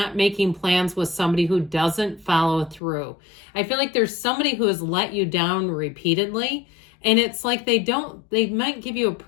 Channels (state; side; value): drops out; right; at 2.8 s